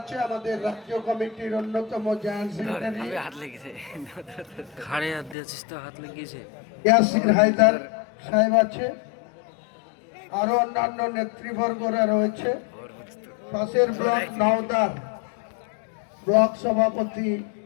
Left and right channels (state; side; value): drops out; right; at 5.4 s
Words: আমাদের রাজ্য কমিটির অন্যতম জয়েন্ট সেক্রেটারি ইয়াসির হায়দার সাহেব আছে, আরো অন্যান্য নেতৃবর্গরা রয়েছে। পাশের ব্লক নওদার ব্লক সভাপতি